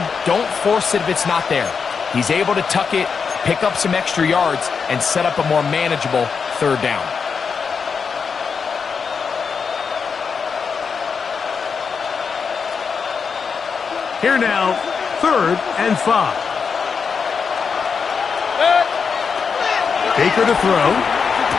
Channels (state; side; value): quieter; right; 5.8 dB